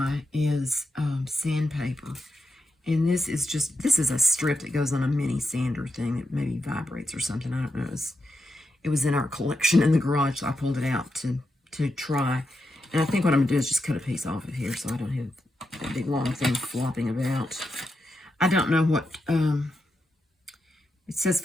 is sandpaper. And this is a strip that goes on a mini sander thing that maybe vibrates or something. I don't know. It was in our collection in the garage, so I pulled it out to try. And I think what I'm going to do is just cut a piece off of here so I don't have that big long thing flopping about. I don't know what, it says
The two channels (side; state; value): both; normal; correlation 0.87